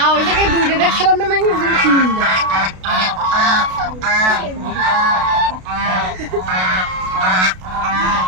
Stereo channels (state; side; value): late; left; 32 ms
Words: ওই জায়গায় দুইটা দেখছিলাম না, মানে ওই জায়গায় তিনটা।